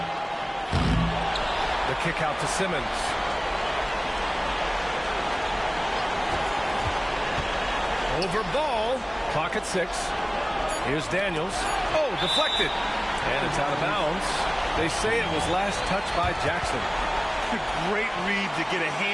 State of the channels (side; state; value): both; identical; correlation 1.00